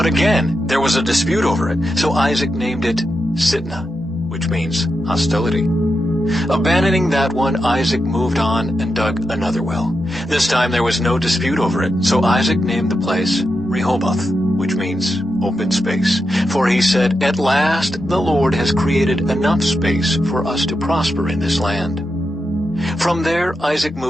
again there was a dispute over it, so Isaac named it Sitnah, which means hostility. Abandoning that one, Isaac moved on and dug another well. This time there was no dispute over it, so Isaac named the place Rehoboth, which means open space. For he said, "At last the Lord has created enough space for us to prosper in this land." From there Isaac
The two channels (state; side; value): normal; both; correlation 0.87